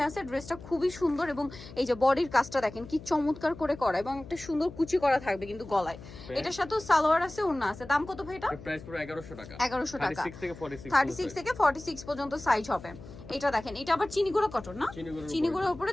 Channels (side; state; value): left; noise; hum, 16 dB below the sound